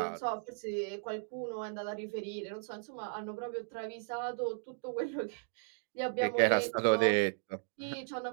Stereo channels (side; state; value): left; silent; digital silence